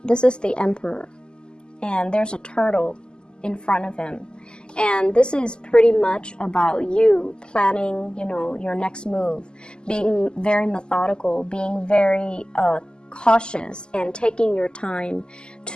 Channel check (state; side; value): late; right; 0.047 ms